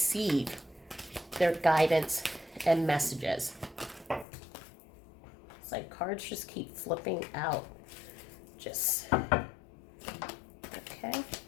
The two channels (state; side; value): drops out; right; at 4.2 s